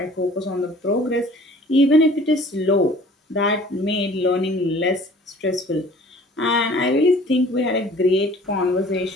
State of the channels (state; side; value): normal; both; correlation 0.50